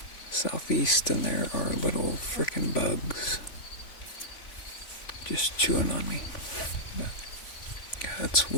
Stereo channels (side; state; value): right; late; 3.5 ms